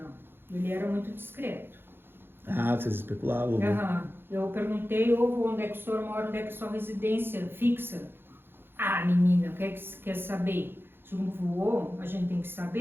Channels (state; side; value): late; left; 0.10 ms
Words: Ele era muito discreto. Vocês especulavam. Né? Eu perguntei, onde é que o senhor mora, onde é que é sua residência fixa? Menina, o que é que você quer saber? Se um voou, a gente tem que